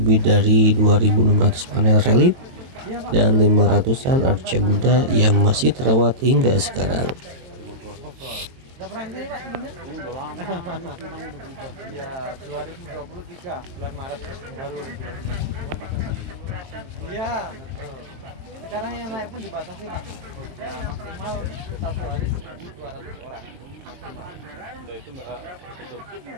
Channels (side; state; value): left; late; 22 ms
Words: dari 2.600 panel relief dan 500-an arca Buddha yang masih terawat hingga sekarang. Ya, 2023 bulan Maret baru. Iya, sekarang yang naik pun dibatasi, Pak. Maksimal 1 hari 1.200 orang. Itu nggak tutup.